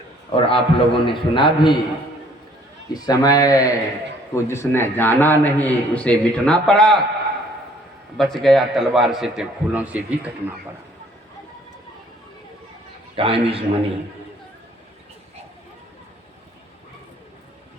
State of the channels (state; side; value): normal; both; correlation 0.59